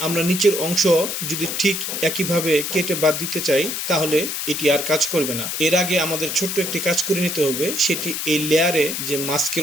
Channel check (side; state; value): left; noise; hiss, 3 dB below the sound